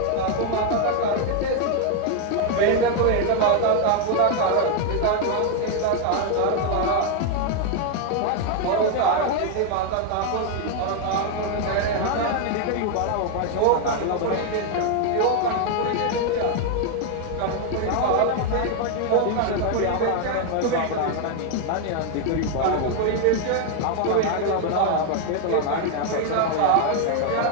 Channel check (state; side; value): different; both; correlation 0.00